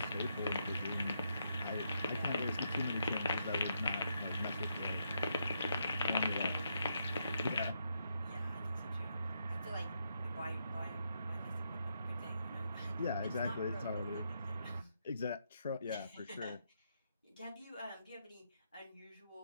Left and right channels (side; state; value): both; inverted; correlation -0.79